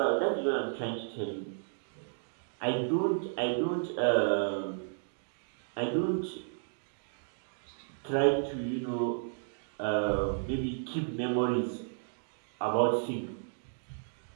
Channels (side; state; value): left; silent; digital silence